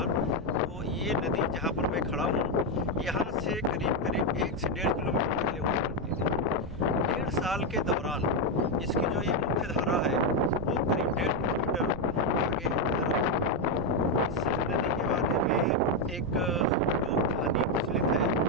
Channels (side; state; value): right; noise; rumble, 14 dB below the sound